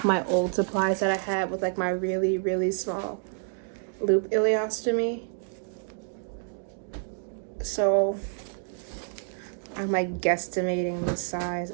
my old supplies that I had with like my really, really small loop ileostomy. So I'm like guesstimating the size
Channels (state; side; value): silent; left; digital silence